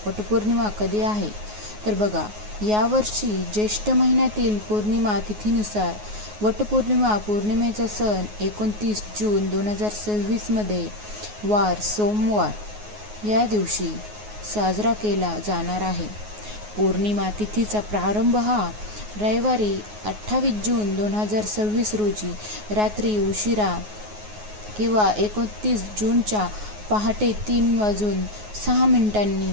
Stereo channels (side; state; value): left; late; 9.5 ms